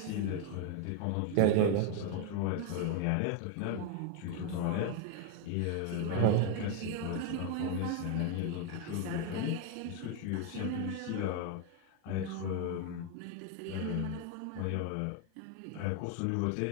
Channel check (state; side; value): different; both; correlation 0.01